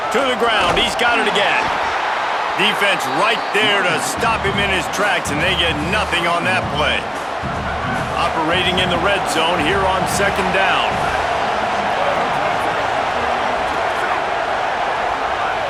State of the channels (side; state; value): both; identical; correlation 1.00